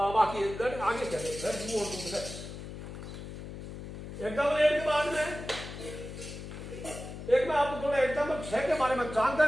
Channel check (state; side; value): noise; left; hum, 10 dB below the sound